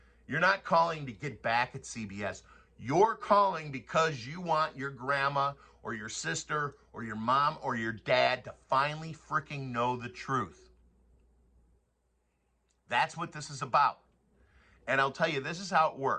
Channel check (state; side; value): identical; both; correlation 1.00